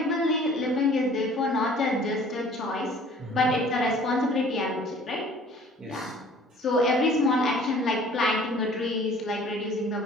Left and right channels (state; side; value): normal; both; correlation 0.51